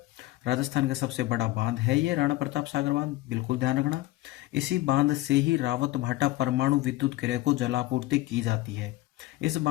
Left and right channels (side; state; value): right; quieter; 17.7 dB